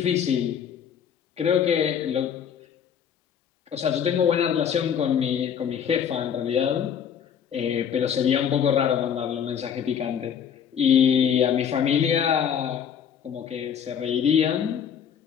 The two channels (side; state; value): right; quieter; 8.2 dB